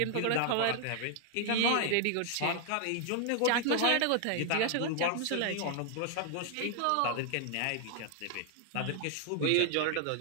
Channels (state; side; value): different; both; correlation 0.00